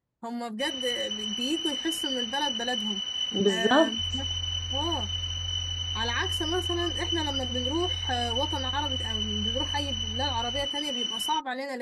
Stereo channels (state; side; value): identical; both; correlation 1.00